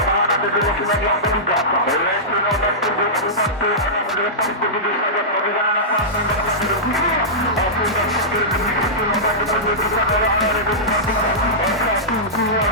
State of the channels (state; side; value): normal; both; correlation -0.14